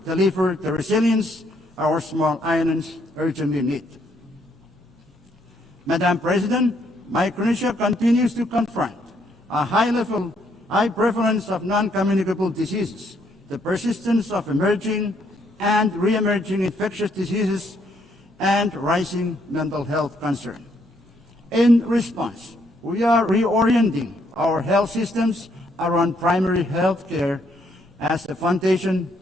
deliver the resilience our small islands urgently need. Madam President, Micronesia continues to confront a high prevalence of non-communicable diseases, the persistence of emerging and re-emerging infectious diseases, and rising mental health concern. In response, we are reorienting our health systems around primary health care as the foundation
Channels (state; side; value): normal; both; correlation 0.71